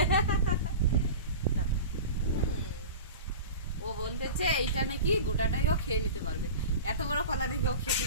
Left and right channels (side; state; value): both; inverted; correlation -0.32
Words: ও বলতেছে এইটা নাকি গোটাটাই ও খেয়ে নিতে পারবে, এত বড় কলা নাকি ও খেতে